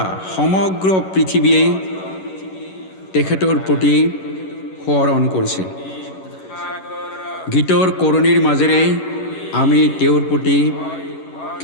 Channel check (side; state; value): right; late; 11 ms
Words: সমগ্ৰ পৃথিৱীয়ে তেখেতৰ প্ৰতি সোঁৱৰণ কৰিছে। গীতৰ কৰণীৰ মাজেৰে আমি তেওঁৰ প্ৰতি